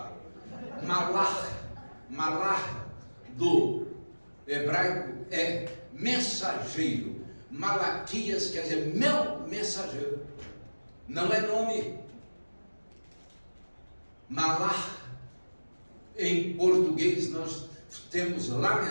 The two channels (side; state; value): both; inverted; correlation -1.00